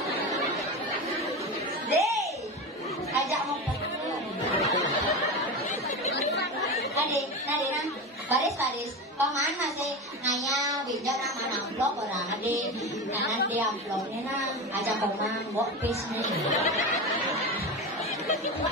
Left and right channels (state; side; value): normal; both; correlation 0.23